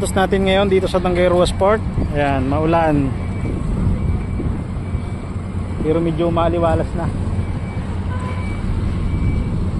natin ngayon dito sa Tanggayruas Port. Ayan, maulan. Pero medyo maliwalas na.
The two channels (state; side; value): identical; both; correlation 1.00